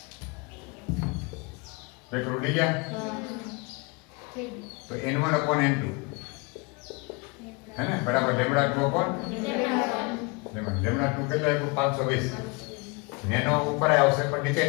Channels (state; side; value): quieter; right; 29.1 dB